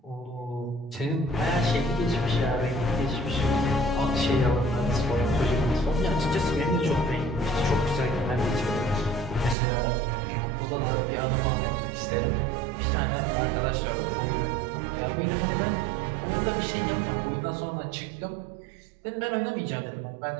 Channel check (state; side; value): drops out; left; at 9.6 s